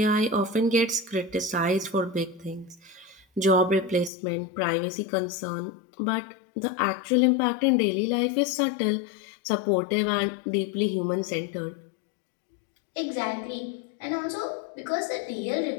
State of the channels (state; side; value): drops out; right; at 4.1 s